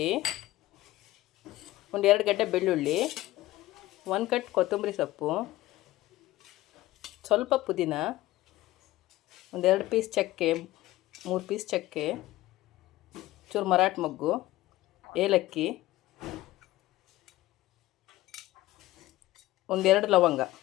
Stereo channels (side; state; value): right; quieter; 16.9 dB